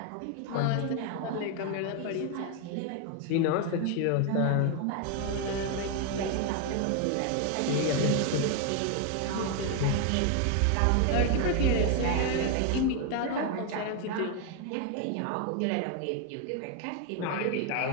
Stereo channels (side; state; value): both; different; correlation 0.01